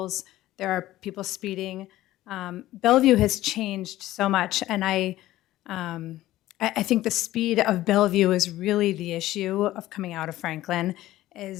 There are people speeding. Bellevue has changed so much, and I think the speed of Bellevue is really the issue of coming out of Franklin.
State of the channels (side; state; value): right; quieter; 15.4 dB